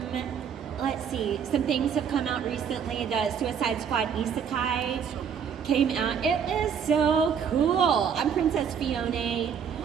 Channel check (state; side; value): quieter; left; 7.4 dB